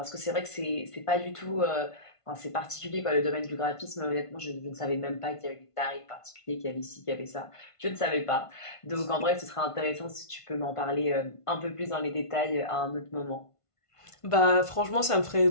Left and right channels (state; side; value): late; right; 1.5 ms